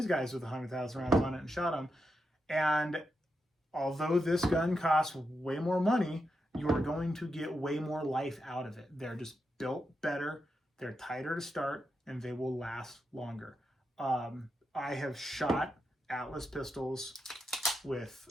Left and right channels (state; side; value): normal; both; correlation 0.86